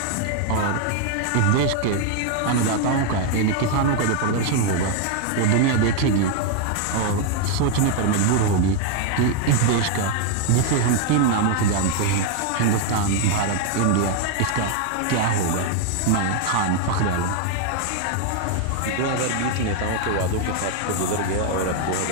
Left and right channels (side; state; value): both; different; correlation 0.00